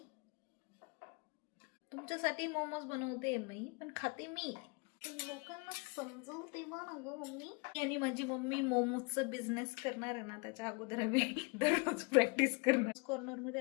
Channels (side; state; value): right; quieter; 30.9 dB